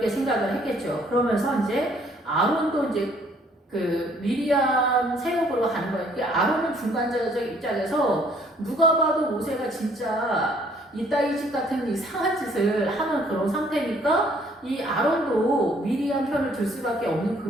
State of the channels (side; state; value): both; normal; correlation 0.62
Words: 생각을 했겠죠. 그러면서 이제 아론도 이제 그 미리암 세력으로 가는 거예요. 그 아론은 중간자적 입장에서 누가 봐도 모세가 진짜 이따위 집 같은 이상한 짓을 하는 그런 상태니까 이 아론도 미리암 편을 들 수밖에 없는